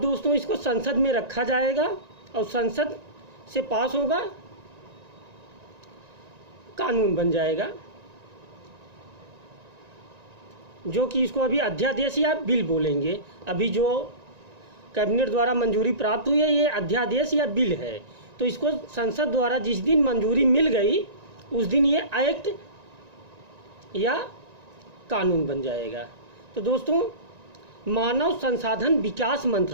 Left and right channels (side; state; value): left; late; 1.9 ms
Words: दोस्तों इसको संसद में रखा जाएगा और संसद से पास होगा, कानून बन जाएगा, जो कि इसको अभी अध्यादेश या बिल बोलेंगे। अभी जो कैबिनेट द्वारा मंजूरी प्राप्त हुई है ये अध्यादेश या बिल है, तो इसको संसद द्वारा जिस दिन मंजूरी मिल गई उस दिन ये एक्ट या कानून बन जाएगा। तो दोस्तों मानव संसाधन विकास